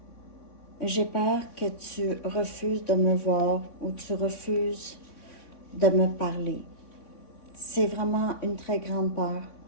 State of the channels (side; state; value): right; late; 3.5 ms